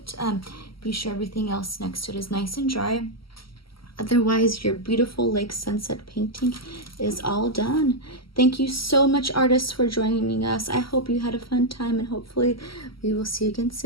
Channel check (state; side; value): late; right; 0.75 ms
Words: Be sure everything else next to it is nice and dry. Otherwise, your beautiful lake sunset painting is all done. Thank you so much, artists, for joining us. I hope you had a fun time, and hopefully we will see you again